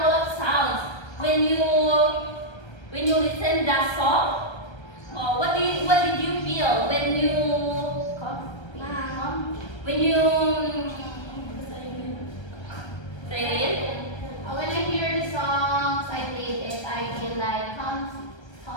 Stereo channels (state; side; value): late; right; 1.3 ms